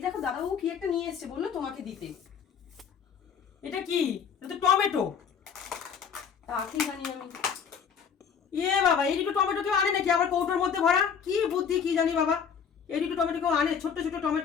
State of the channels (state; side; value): quieter; right; 6.9 dB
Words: দেখো দাদাবাবু কি একটা নিয়ে এসেছে, বললো তোমাকে দিতে। এটা কি? এটা তো টমেটো। তা কি জানি আমি। বাবা, এই দুটো টমেটো কেউ আনে নাকি আবার কৌটোর মধ্যে ভরা? কি বুদ্ধি কি জানি বাবা। এই দুটো টমেটো কেউ আনে? ছোট ছোট